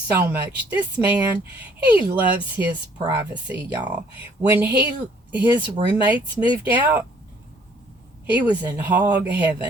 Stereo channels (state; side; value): normal; both; correlation 0.60